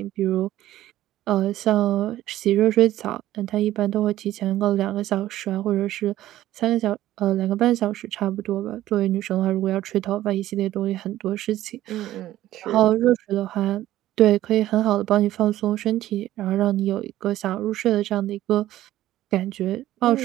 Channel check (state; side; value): quieter; left; 14.3 dB